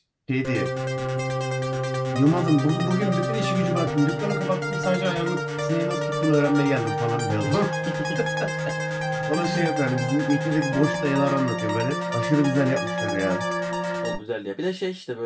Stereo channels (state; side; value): identical; both; correlation 1.00